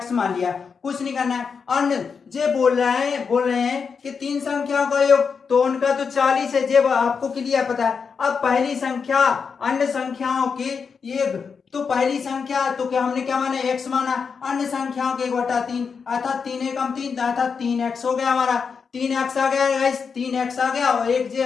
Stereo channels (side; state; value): right; quieter; 5.8 dB